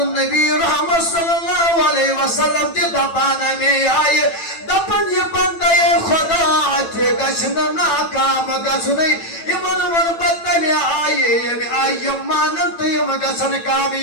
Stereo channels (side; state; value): right; late; 9.0 ms